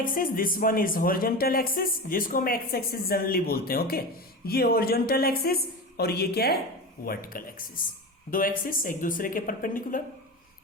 this one is horizontal axis, जिसको हम एक्स एक्सिस जनरली बोलते हैं। ओके, ये हॉरिजॉन्टल एक्सिस और ये क्या है? Vertical axis. 2 एक्सिस एक दूसरे के परपेंडिकुलर,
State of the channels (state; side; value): normal; both; correlation 0.26